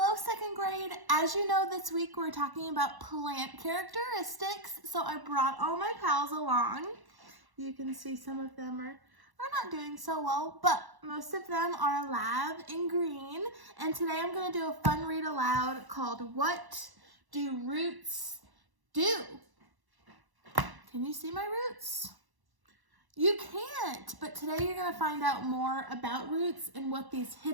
second grade. As you know, this week we're talking about plant characteristics, so I brought all my pals along. You can see some of them are not doing so well, but most of them are alive in green. And today I'm going to do a fun read aloud called What Do Roots Do? Can you see my roots? You can't, but today you're going to find out more about roots and what these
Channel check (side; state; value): left; late; 1.1 ms